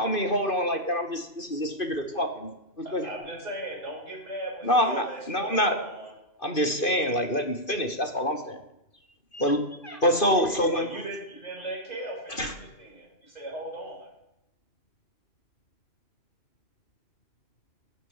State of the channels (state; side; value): late; right; 2.5 ms